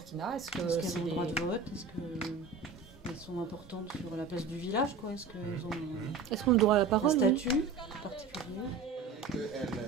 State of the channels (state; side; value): quieter; left; 4.9 dB